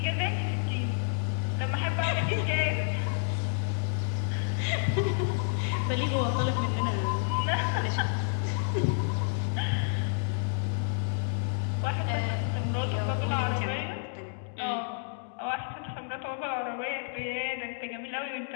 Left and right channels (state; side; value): silent; right; digital silence